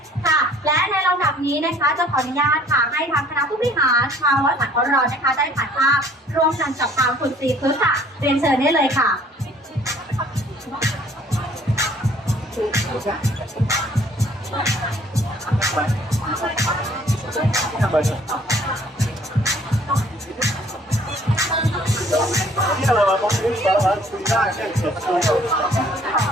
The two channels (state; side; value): normal; both; correlation 0.57